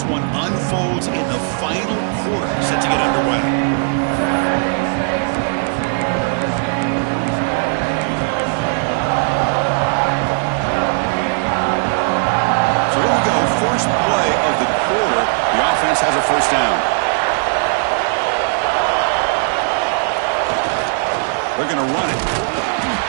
one unfolds in the final quarter set to get underway. First play of the quarter, the offense has a first down. They're going to run it.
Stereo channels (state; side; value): silent; left; 60 dB below the other